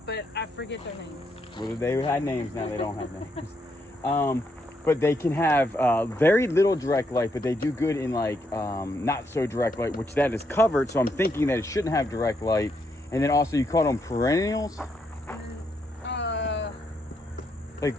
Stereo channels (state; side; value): normal; both; correlation 0.77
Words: but I forget their names. well, they had names, now they don't have names. But they can have very little direct light, but they do good in like not so direct light, which that is covered. So I'm thinking that it shouldn't have direct light. And then also you call them perennials? Like,